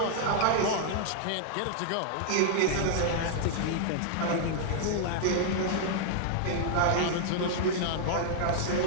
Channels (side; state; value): both; different; correlation 0.00